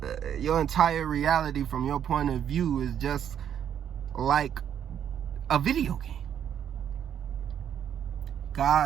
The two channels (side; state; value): left; quieter; 9.2 dB